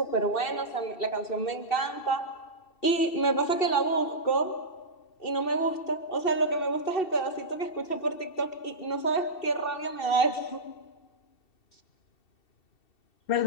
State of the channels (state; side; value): late; right; 2.7 ms